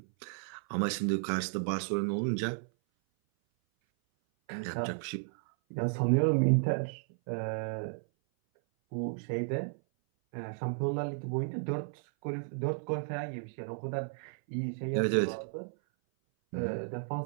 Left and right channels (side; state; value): left; silent; 56 dB below the other